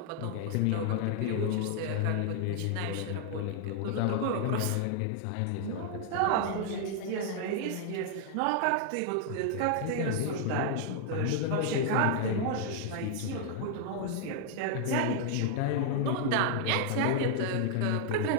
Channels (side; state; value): both; different; correlation 0.00